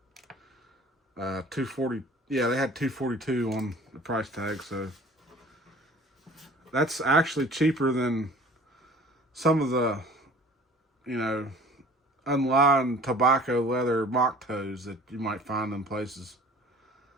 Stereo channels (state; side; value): normal; both; correlation 0.48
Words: Yeah, they had 242 on the price tag. So that's actually cheaper than some of the, you know, unlined tobacco leather mock toes that you might find in places.